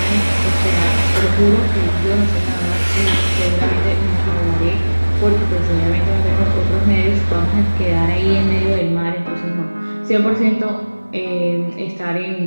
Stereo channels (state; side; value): inverted; both; correlation -1.00